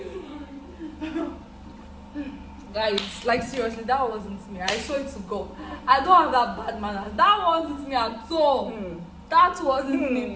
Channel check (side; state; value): both; identical; correlation 1.00